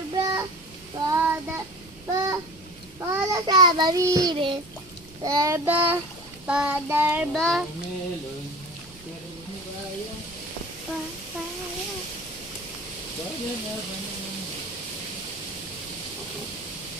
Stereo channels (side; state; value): right; noise; rumble, 23 dB below the sound